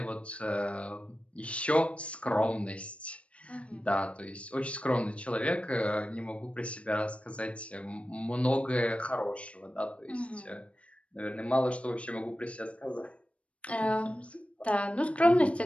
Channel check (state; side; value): late; right; 0.062 ms